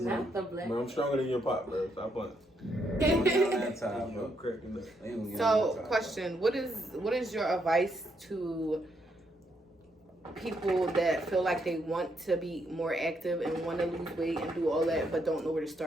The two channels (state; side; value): normal; both; correlation 0.77